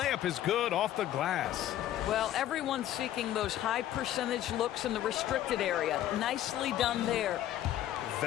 is good off the glass. Well, everyone's seeking those high percentage looks in the restricted area. Nicely done there.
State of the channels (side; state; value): right; quieter; 12.5 dB